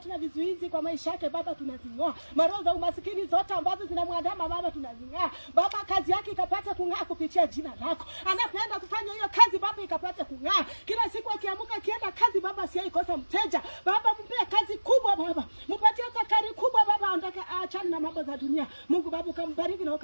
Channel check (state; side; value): inverted; both; correlation -1.00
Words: na vizuizi kwa maisha yake Baba tunazing'oa. Maroho za umasikini zote ambazo zinamwandama Baba tunazing'oa. Baba kazi yake ikapata kung'aa kupitia jina lako. Anapenda kufanya hiyo kazi Baba ikapata kung'aa. Kila siku akiamka akienda kazi Baba asiyeikosa mteja. Baba mpe kazi kubwa Baba. Mpatie takari kubwa Baba, aondoke aachane na mambo za dunia. Mungu Baba ukambariki na